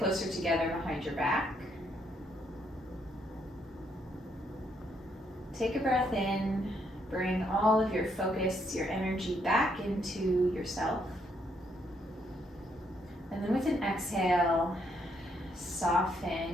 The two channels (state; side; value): normal; both; correlation 0.73